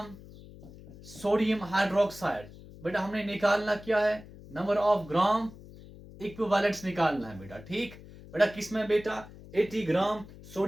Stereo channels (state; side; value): noise; left; hum, 18 dB below the sound